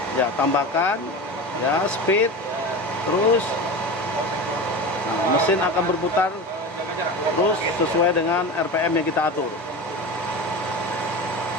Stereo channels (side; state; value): both; normal; correlation 0.27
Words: Ya, tambahkan ya speed, terus nah, mesin akan berputar terus sesuai dengan RPM yang kita atur.